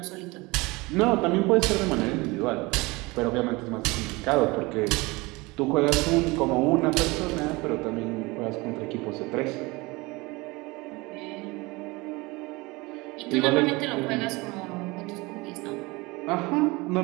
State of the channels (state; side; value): quieter; left; 23.7 dB